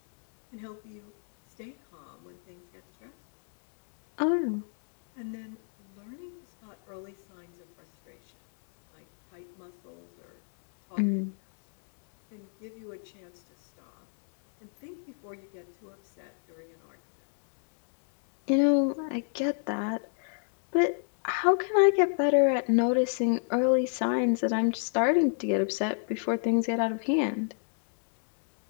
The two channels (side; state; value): right; silent; 57 dB below the other